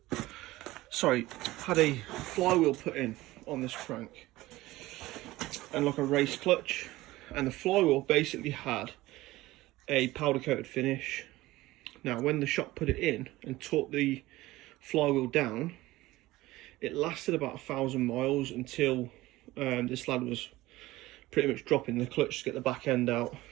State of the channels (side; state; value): left; quieter; 18.1 dB